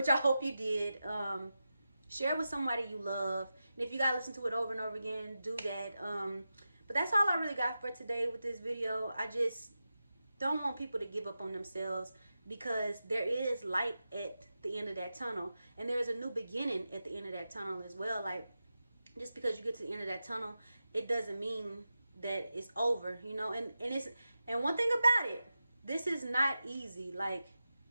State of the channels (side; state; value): both; inverted; correlation -0.92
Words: I hope you did, share it with somebody you love. And if you gotta listen to it over and over again, do that. But that's all I really got for today with this video. I just don't want people to give up on themselves, because there is light at the end of that tunnel. And there is a new beginning at the end of that tunnel as well. Like, just because you get to the end of that tunnel, it doesn't mean that it's over, you know. And one thing about it, this is not easy. Like,